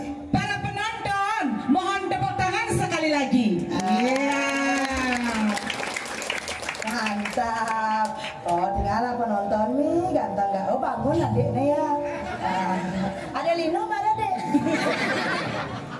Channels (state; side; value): identical; both; correlation 1.00